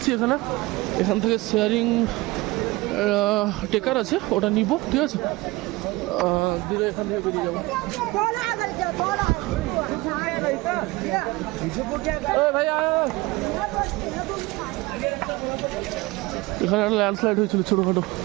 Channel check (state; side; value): quieter; left; 21.6 dB